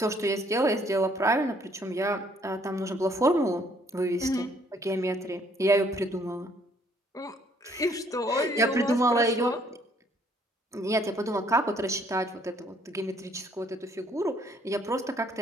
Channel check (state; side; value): normal; both; correlation 0.64